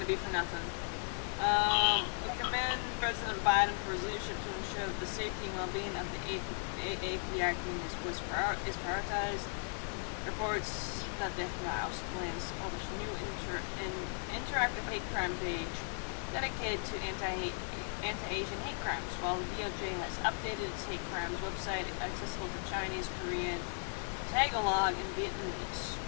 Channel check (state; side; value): silent; right; 53 dB below the other